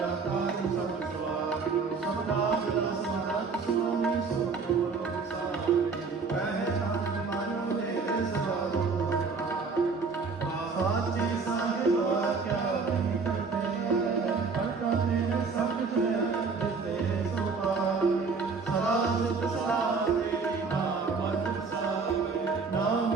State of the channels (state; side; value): quieter; left; 4.8 dB